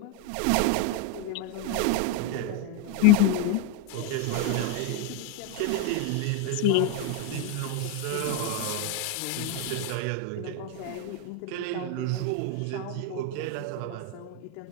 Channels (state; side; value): different; both; correlation 0.02